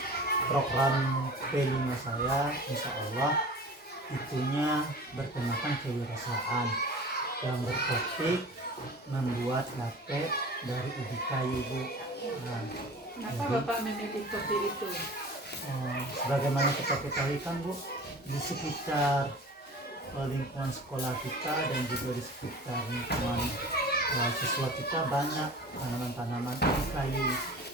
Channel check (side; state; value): both; normal; correlation 0.39